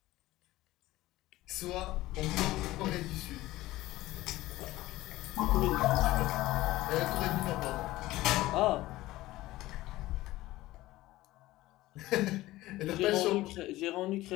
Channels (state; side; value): quieter; right; 17.3 dB